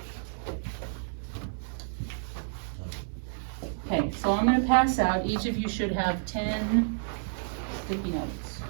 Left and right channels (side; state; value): left; silent; 56 dB below the other